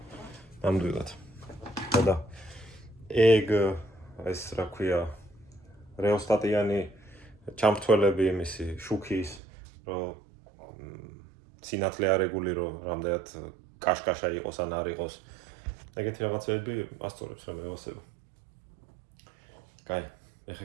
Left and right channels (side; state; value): left; drops out; at 9.4 s